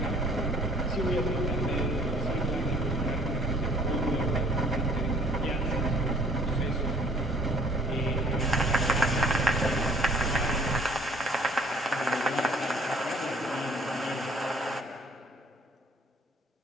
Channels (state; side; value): normal; both; correlation 0.57